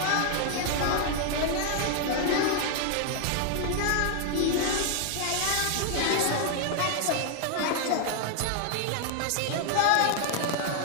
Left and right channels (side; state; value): both; different; correlation 0.00